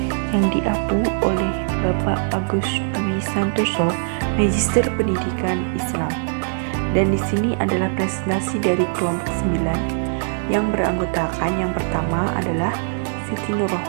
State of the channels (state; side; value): silent; left; digital silence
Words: yang diapu oleh Bapak Agus Dwi Santoso, Magister Pendidikan Islam. Dan di sini adalah presentasi dari kelompok 9 yang beranggotakan yang pertama adalah Siti